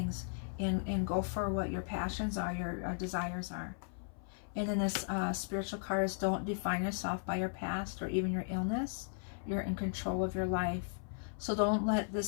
and go for what your passions are, your desires are. And then this spiritual card is, don't define yourself by your past or even your illness. You're in control of your life. So don't let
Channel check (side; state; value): right; silent; 53 dB below the other